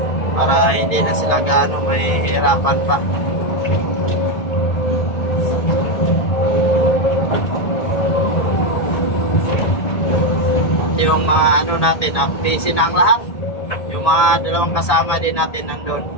Para hindi na sila gaano mahihirapan pa. Yung mga ano natin, busy na ang lahat. Yung mga dalawang kasama din natin nandun.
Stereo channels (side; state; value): right; late; 1.8 ms